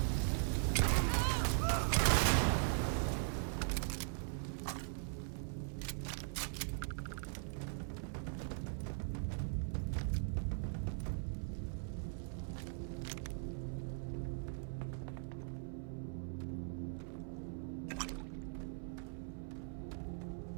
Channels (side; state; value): left; silent; 51 dB below the other